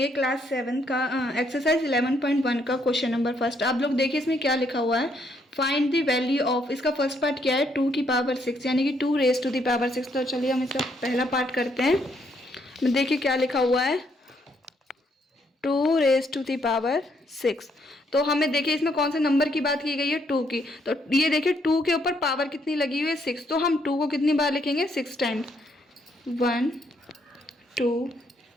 क्लास 7 का एक्सरसाइज 11.1 का क्वेश्चन नंबर फर्स्ट। आप लोग देखिए इसमें क्या लिखा हुआ है, फाइंड द वैल्यू ऑफ। इसका फर्स्ट पार्ट क्या है, 2 की पावर 6 यानी कि 2 रेज टू द पावर 6। तो चलिए हम इसका पहला पार्ट करते हैं। देखिए क्या लिखा हुआ है, 2 रेज टू द पावर 6। तो हमें देखिए इसमें कौन से नंबर की बात की गई है, 2 की। तो ये देखिए 2 के ऊपर पावर कितनी लगी हुई है, 6। तो हम 2 को कितनी बार लिखेंगे, 6 टाइम्स। 1 2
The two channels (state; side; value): normal; both; correlation 0.72